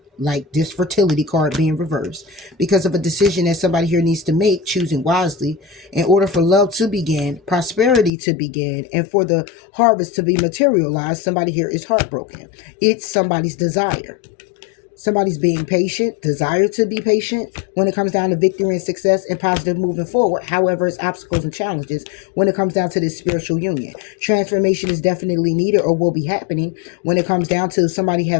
like this fertility card being reversed, because of a decision that somebody here needs to make, choosing wisely in order for love to begin, prosperity to begin, and for the harvest to be materialized. Somebody here is heartbroken. It's somebody's desire. Somebody's being patient, desire to be patient when it comes down to victory and success and positive moving forward. However, it's obstacles and challenges when it comes down to this spiritual union. Transformation is definitely needed or will be happening when it comes down to somebody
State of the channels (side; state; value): right; drops out; at 8.1 s